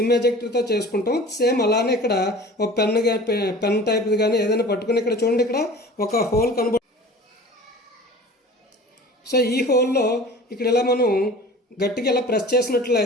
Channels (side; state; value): both; normal; correlation 0.42